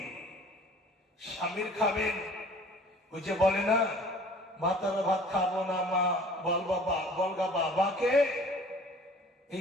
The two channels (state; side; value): normal; both; correlation 0.49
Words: স্বামীর খাবেন, ওই যে বলে না, ভাতার ভাত খাবো না মা, বল বাবা, বলগা বাবাকে। এই